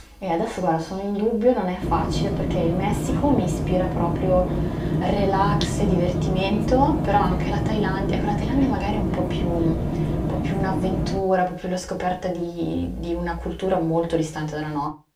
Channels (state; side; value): identical; both; correlation 1.00